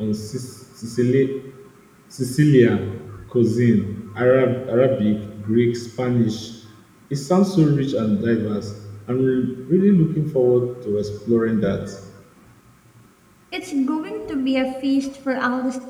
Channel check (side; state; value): both; identical; correlation 1.00